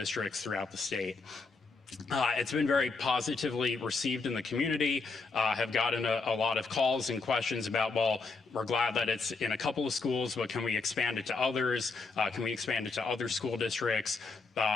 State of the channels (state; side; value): quieter; right; 4.2 dB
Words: throughout the state. It's been very positively received in the community. Have gotten a lot of calls and questions about, well, we're glad that it's in a couple of schools, but can we expand it to others? Can we expand it to other school districts?